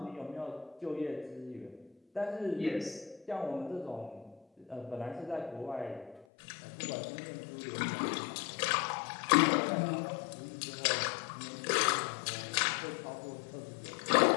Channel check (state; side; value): drops out; right; at 6.2 s